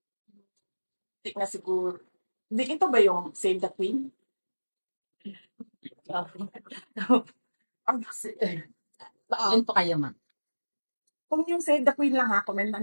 hindi na siguro. Hindi, ito ba yung Save the Queen? Attend po kayo ma'am. Kung yung Save the Queen lang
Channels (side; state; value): both; inverted; correlation -1.00